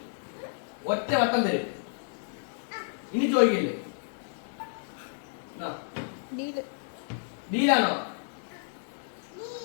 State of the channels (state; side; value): silent; right; 57 dB below the other